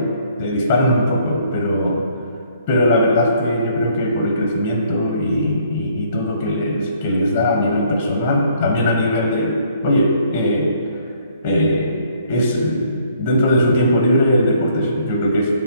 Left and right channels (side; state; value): both; inverted; correlation -0.64